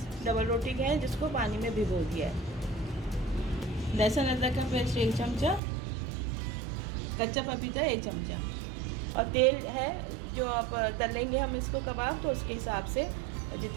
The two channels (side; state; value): left; drops out; at 5.6 s